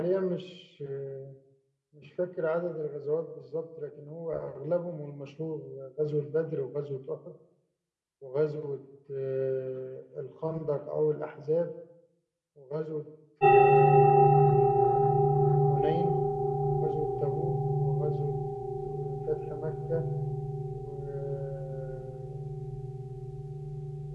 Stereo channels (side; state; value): both; identical; correlation 1.00